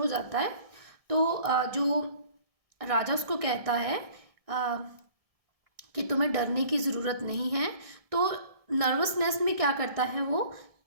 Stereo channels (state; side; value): late; left; 1.6 ms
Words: जाता है। तो जो राजा उसको कहता है कि तुम्हें डरने की ज़रूरत नहीं है। तो नर्वसनेस में क्या करता है, वो